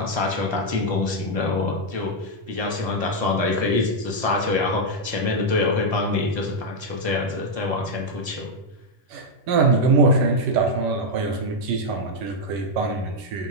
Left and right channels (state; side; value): late; left; 11 ms